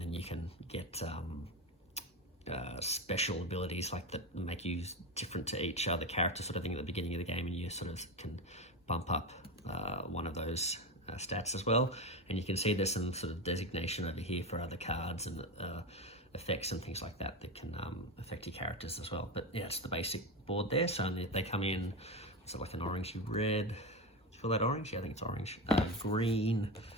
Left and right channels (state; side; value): normal; both; correlation 0.18